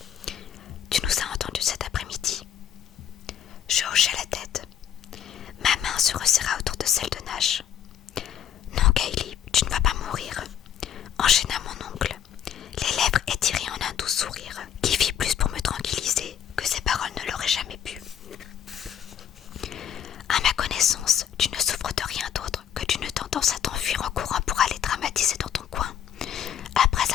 Tu nous as entendus cet après-midi ?» Je hochai la tête. Ma main se resserra autour de celle de Nash. « Non, Kaylee, tu ne vas pas mourir », enchaîna mon oncle, les lèvres étirées en un doux sourire qui fit plus pour me tranquilliser que ses paroles ne l'auraient jamais pu. « À ma connaissance, tu ne souffres de rien d'autre que d'une tendance à t'enfuir en courant pour aller dramatiser dans ton coin, après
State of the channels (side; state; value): right; quieter; 9.3 dB